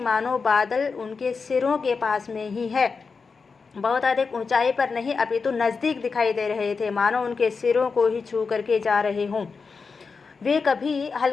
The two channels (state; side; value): quieter; right; 4.9 dB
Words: मानो बादल उनके सिरों के पास में ही है, बहुत अधिक ऊंचाई पर नहीं अपितु नज़दीक दिखाई दे रहे थे, मानो उनके सिरों को ही छू करके जा रहे हों। वे कभी